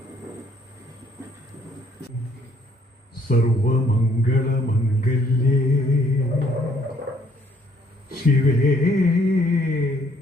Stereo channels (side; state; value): both; normal; correlation 0.65